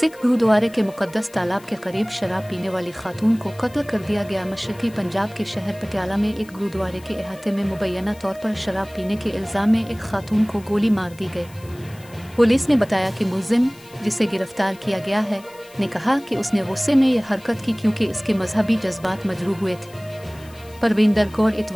गुरुद्वारे के मुकद्दस तालाब के करीब शराब पीने वाली खातून को कत्ल कर दिया गया। मशरकी पंजाब के शहर पटियाला में एक गुरुद्वारे के अहाते में मुबैना तौर पर शराब पीने के इल्ज़ाम में एक खातून को गोली मार दी गई। पुलिस ने बताया कि मुलजिम, जिसे गिरफ्तार किया गया है, ने कहा कि उसने गुस्से में यह हरकत की क्योंकि इसके मजहबी जज्बात मजरूह हुए थे। परविंदर कौर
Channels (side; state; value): left; noise; hiss, 24 dB below the sound